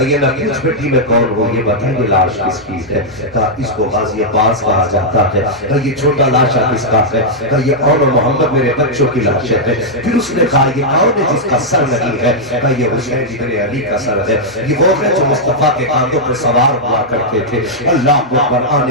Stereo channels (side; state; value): both; normal; correlation -0.06